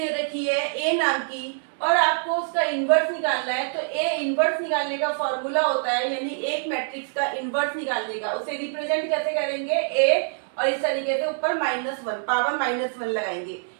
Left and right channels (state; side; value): silent; left; 62 dB below the other